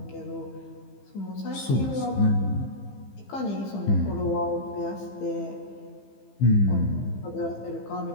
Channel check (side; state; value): right; late; 15 ms